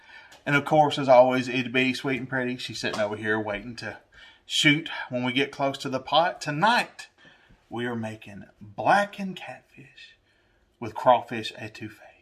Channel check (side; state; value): both; identical; correlation 1.00